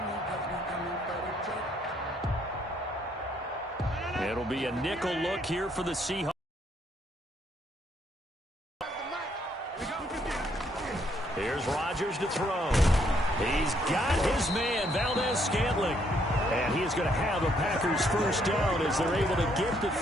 It'll be a nickel look here for the Seahawks. Here's Rodgers to throw. He's got his man, Valdez-Scantling. And he is going to have a Packers first down as they're able to get the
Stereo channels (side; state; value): both; normal; correlation 0.70